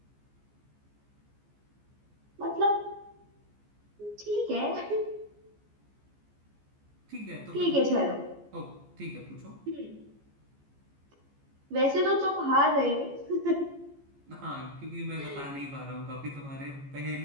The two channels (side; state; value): left; late; 14 ms